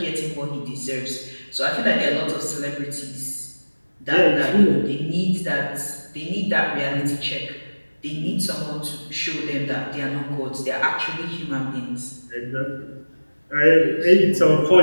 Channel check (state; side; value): inverted; both; correlation -1.00